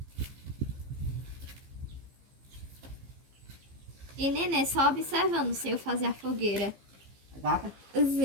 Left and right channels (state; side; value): late; left; 15 ms